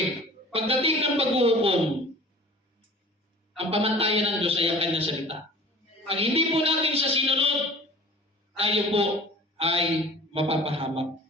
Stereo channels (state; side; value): normal; both; correlation 0.44